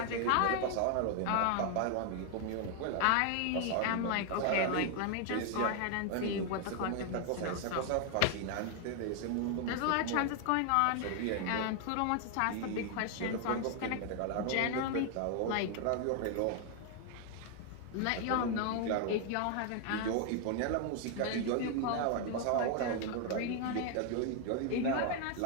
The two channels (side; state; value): both; different; correlation 0.00